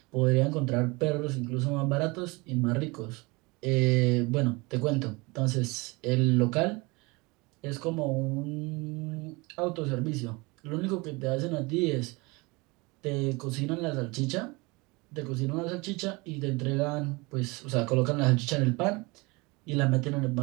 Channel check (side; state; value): left; quieter; 25.5 dB